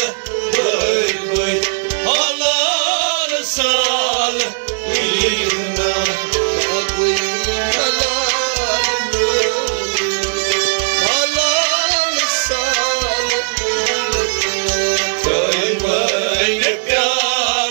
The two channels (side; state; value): left; silent; digital silence